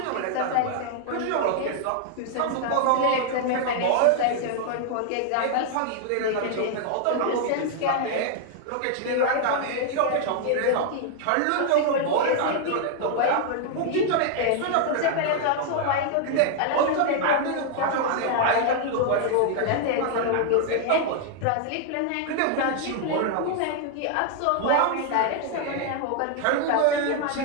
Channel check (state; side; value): different; both; correlation 0.00